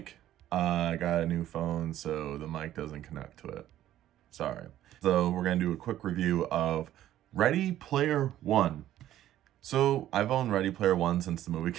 I got a new phone, so the mic doesn't connect to it. Sorry. So we're going to do a quick review of Ready Player One. So I've owned Ready Player One since the movie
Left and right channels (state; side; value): quieter; left; 12.8 dB